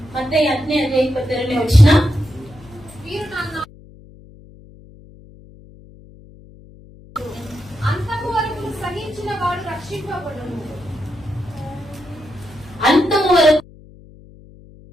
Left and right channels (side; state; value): left; noise; hum, 22 dB below the sound